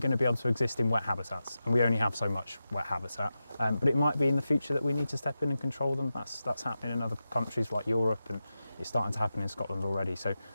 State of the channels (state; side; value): inverted; both; correlation -0.92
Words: to be able to exist in wet habitats, and we only have so much wet habitat. But it might be in the future that we need to step in and control them. That's happening in other countries like Europe, and it's starting to happen in Scotland already. So